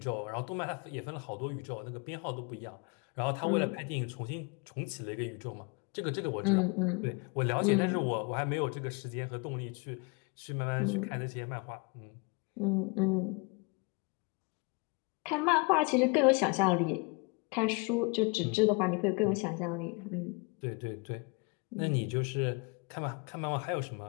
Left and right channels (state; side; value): quieter; right; 31.2 dB